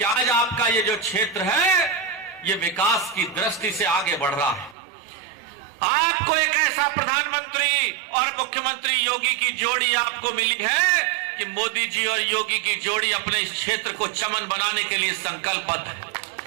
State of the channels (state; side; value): drops out; left; at 4.8 s